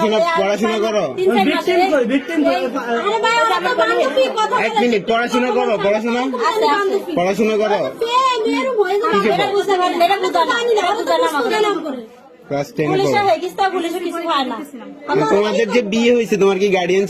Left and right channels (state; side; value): identical; both; correlation 1.00